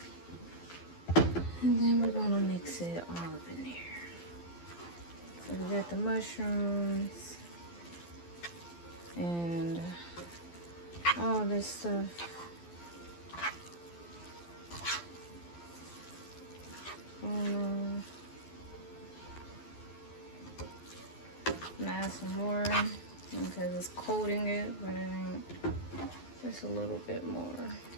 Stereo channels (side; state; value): right; late; 12 ms